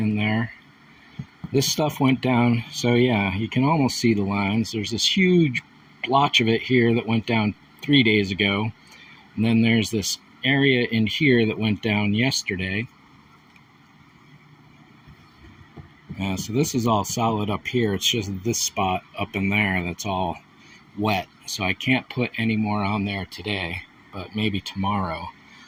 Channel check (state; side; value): identical; both; correlation 1.00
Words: there. This stuff went down, so yeah, you can almost see the lines. There's this huge blotch of it here that went down 3 days ago, and then there's this area in here that went down yesterday. So this is all solid up here. It's just this spot up in there that's all wet, so I can't put any more on there today, but maybe tomorrow.